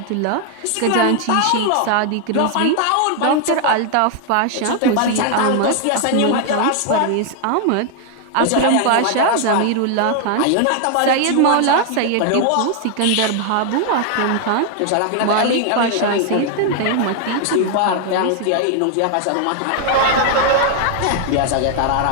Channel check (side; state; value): both; different; correlation 0.00